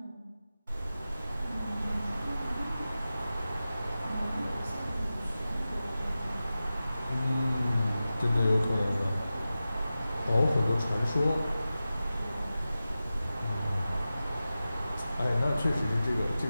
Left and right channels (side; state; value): both; inverted; correlation -0.94